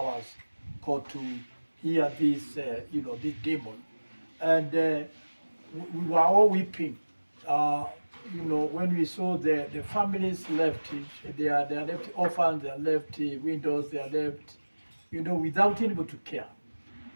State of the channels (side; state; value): both; inverted; correlation -1.00